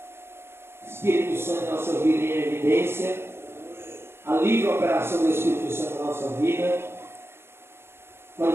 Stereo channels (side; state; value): left; late; 0.12 ms